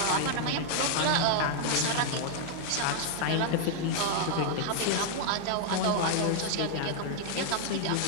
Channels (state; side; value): different; both; correlation 0.00